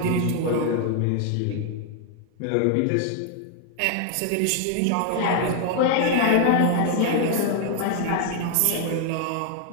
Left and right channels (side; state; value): both; different; correlation 0.00